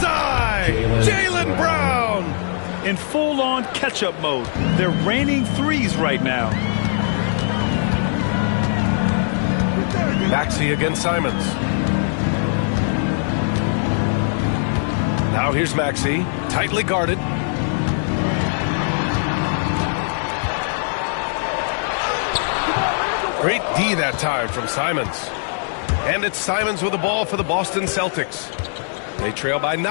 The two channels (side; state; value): right; silent; digital silence